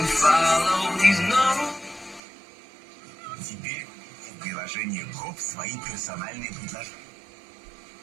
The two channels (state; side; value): drops out; left; at 2.2 s